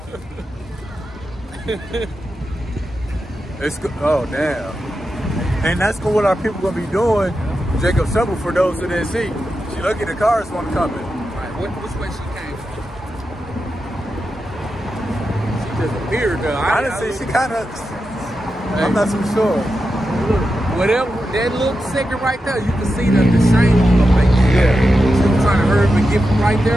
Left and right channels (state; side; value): normal; both; correlation 0.89